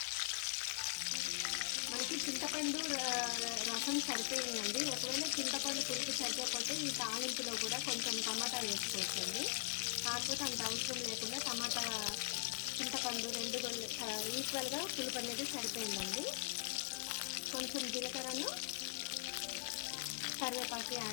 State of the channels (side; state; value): right; quieter; 29.9 dB